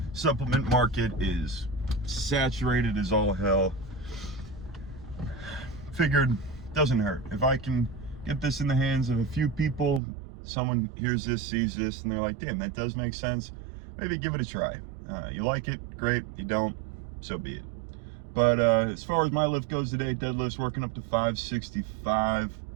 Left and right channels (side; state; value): left; drops out; at 10.0 s